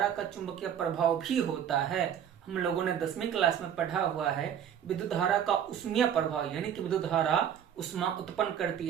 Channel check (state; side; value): quieter; left; 9.1 dB